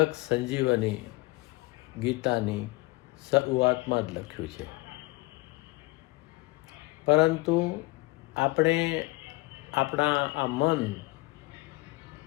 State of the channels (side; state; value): right; quieter; 22.8 dB